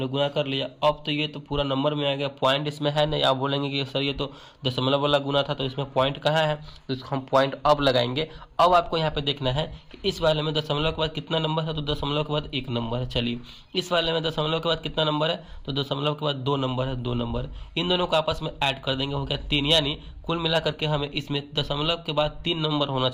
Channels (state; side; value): identical; both; correlation 1.00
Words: गुना कर लिया। अब तो ये तो पूरा नंबर में आ गया, पॉइंट इसमें है नहीं। आप बोलेंगे कि सर ये तो दशमलव वाला गुना था तो इसमें पॉइंट कहाँ है, तो इसको हम पॉइंट अब लगाएंगे। अब आपको यहाँ पे देखना है कि इस वाले में दशमलव के बाद कितना नंबर है, तो दशमलव के बाद 1 नंबर है। चलिए, इस वाले में दशमलव के बाद कितना नंबर है, तो दशमलव के बाद 2 नंबर है, 2 नंबर। इन दोनों को आपस में ऐड कर देंगे, हो गया 3, यानी कुल मिला करके हमें इसमें दशमलव के बाद 3 नंबर होना